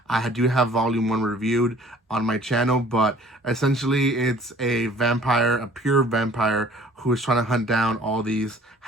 I do have volume 1 reviewed on my channel. But essentially it's a vampire, a pure vampire, who is trying to hunt down all these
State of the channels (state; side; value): normal; both; correlation 0.53